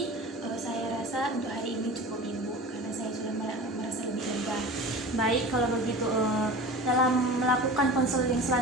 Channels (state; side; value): normal; both; correlation 0.35